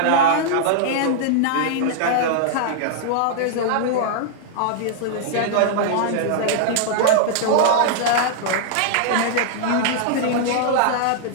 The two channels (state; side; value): different; both; correlation -0.01